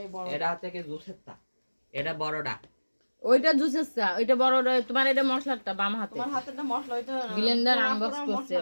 এই বড় এটা হচ্ছে কি জুসের তা, এটা বড়টা। ওইটা জুসের চা, ওইটা বড়টা। তোমার এটা মশলাটা বাম হাতে। তোমার হাতেরটা মশলা ওইটা ব্লেন্ডার পুরা আনবক্স পুরা করছি মশলা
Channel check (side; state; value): both; inverted; correlation -1.00